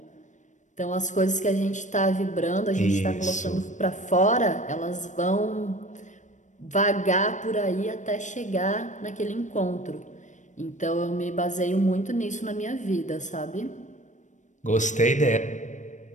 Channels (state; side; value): late; right; 0.35 ms